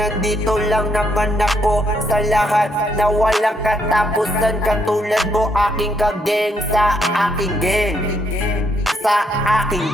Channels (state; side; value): normal; both; correlation 0.74